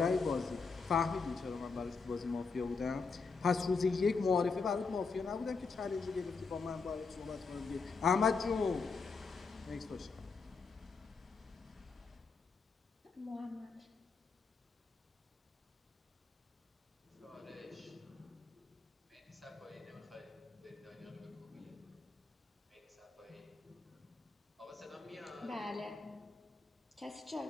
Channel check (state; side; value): quieter; right; 4.7 dB